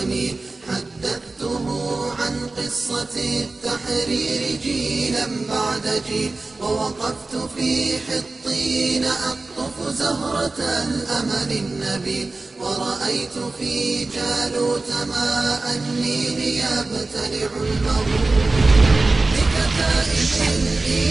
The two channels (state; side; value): quieter; left; 3.4 dB